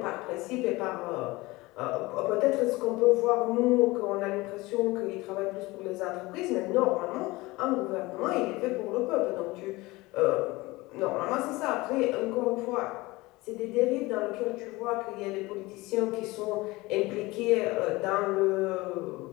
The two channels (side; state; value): right; quieter; 21.4 dB